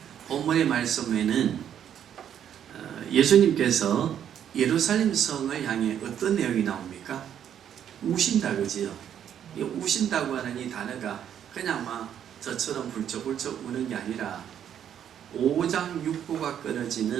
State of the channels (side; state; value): left; quieter; 9.5 dB